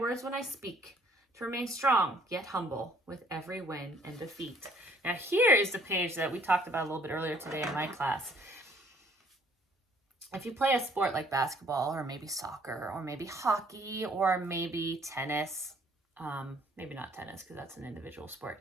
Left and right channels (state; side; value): normal; both; correlation 0.61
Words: when I speak, to remain strong yet humble with every win and defeat. Now here is the page that we talked about a little bit earlier today in my class. If you play a sport like basketball, or maybe soccer, or maybe hockey, or maybe tennis, maybe not tennis because that's an individual